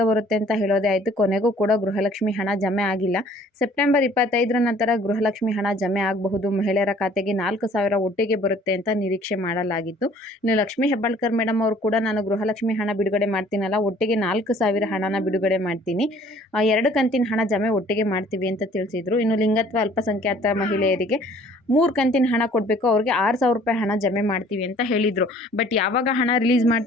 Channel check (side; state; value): both; normal; correlation 0.55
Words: ಬರುತ್ತೆ ಅಂತ ಹೇಳೋದೇ ಆಯಿತು. ಕೊನೆಗೂ ಕೂಡ ಗೃಹಲಕ್ಷ್ಮಿ ಹಣ ಜಮೆ ಆಗಿಲ್ಲ. ಸೆಪ್ಟೆಂಬರ್ 25ರ ನಂತರ ಗೃಹಲಕ್ಷ್ಮಿ ಹಣ ಜಮೆ ಆಗಬಹುದು. ಮಹಿಳೆಯರ ಖಾತೆಗೆ 4,000 ಒಟ್ಟಿಗೆ ಬರುತ್ತೆ ಅಂತ ನಿರೀಕ್ಷೆ ಮಾಡಲಾಗಿತ್ತು. ಇನ್ನು ಲಕ್ಷ್ಮೀ ಹೆಬ್ಬಾಳ್ಕರ್ ಮೇಡಮ್ ಅವರು ಕೂಡ ನಾನು ಗೃಹಲಕ್ಷ್ಮಿ ಹಣ ಬಿಡುಗಡೆ ಮಾಡ್ತೀನಲ್ಲ, ಒಟ್ಟಿಗೆ 4,000 ಹಣನ ಬಿಡುಗಡೆ ಮಾಡ್ತೀನಿ, 2 ಕಂತಿನ ಹಣ ಜಮೆ ಒಟ್ಟಿಗೆ ಮಾಡ್ತೀವಿ ಅಂತ ತಿಳಿಸಿದ್ರು. ಇನ್ನು ಲಿಂಗತ್ವ ಅಲ್ಪಸಂಖ್ಯಾತ ಮಹಿಳೆಯರಿಗೆ 3 ಕಂತಿನ ಹಣ ಕೊಡಬೇಕು, ಅವ್ರಿಗೆ 6,000 ರೂಪಾಯಿ ಹಣ ಜಮೆ ಮಾಡ್ತೀವಿ ಅಂತ ಹೇಳಿದರು. ಬಟ್ ಯಾವಾಗ ಹಣ ರಿಲೀಸ್